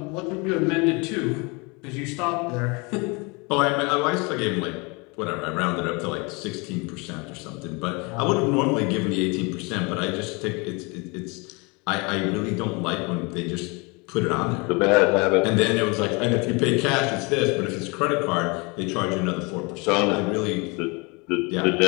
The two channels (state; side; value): quieter; right; 28.9 dB